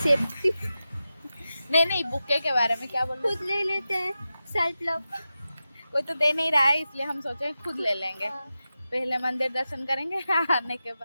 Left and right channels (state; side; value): inverted; both; correlation -0.92